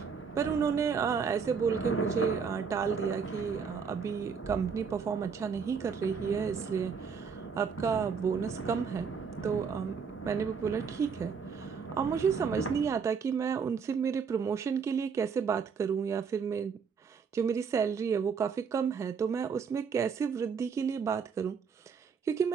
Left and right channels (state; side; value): quieter; left; 6.1 dB